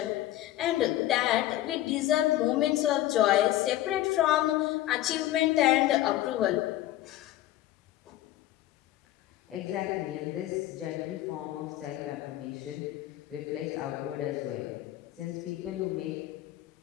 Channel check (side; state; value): right; quieter; 14.5 dB